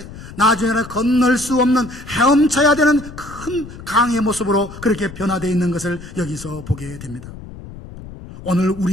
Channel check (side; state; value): left; noise; rumble, 15 dB below the sound